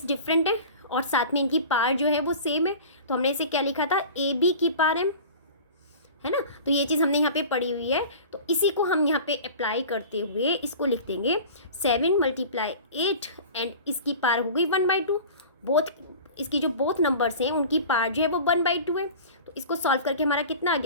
डिफरेंट है और साथ में इनकी पावर जो है वो सेम है, तो हमने इसे क्या लिखा था, ab⁴m, है ना। तो ये चीज़ हमने यहाँ पे पढ़ी हुई है, तो इसी को हम यहाँ पे अप्लाई करते हुए इसको लिख देंगे 7 × 8 एंड इसकी पावर हो गई 1/2। बोथ इसकी जो बोथ नंबर्स हैं उनकी पावर जो है वो 1/2 है। तो इसको सॉल्व करके हमारा कितना आ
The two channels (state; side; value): inverted; both; correlation -0.38